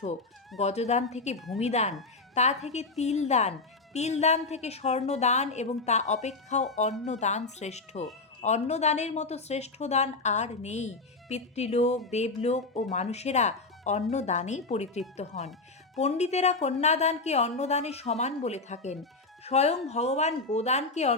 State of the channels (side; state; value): right; quieter; 3.6 dB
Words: গজদান থেকে ভূমিদান, তা থেকে তিলদান, তিলদান থেকে স্বর্ণদান এবং তা অপেক্ষাও অন্নদান শ্রেষ্ঠ। অন্নদানের মতো শ্রেষ্ঠ দান আর নেই। পিতৃলোক, দেবলোক ও মানুষেরা অন্নদানেই পরিতৃপ্ত হন। পণ্ডিতেরা কন্যাদানকে অন্নদানের সমান বলে থাকেন। স্বয়ং ভগবান গোদানকে